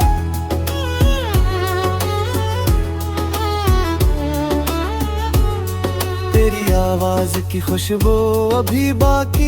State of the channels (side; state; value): both; identical; correlation 1.00